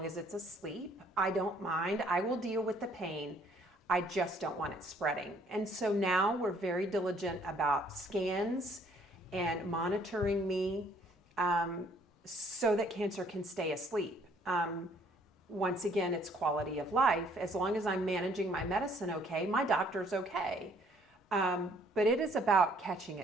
as it's asleep. I don't mind. I will deal with the pain. I just don't want it spreading. And so now we're very diligent about scans and monitoring me so that cancer can stay asleep. Once again, it's quality of life. As long as I'm managing my medicine okay, my doctor's okay. But it is about catching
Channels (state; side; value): normal; both; correlation 0.62